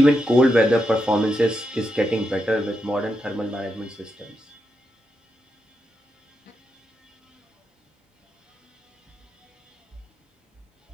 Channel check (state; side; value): normal; both; correlation 0.85